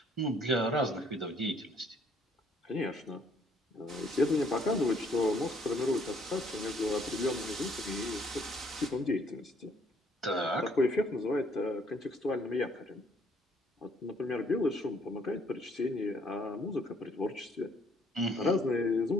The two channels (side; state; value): both; normal; correlation 0.64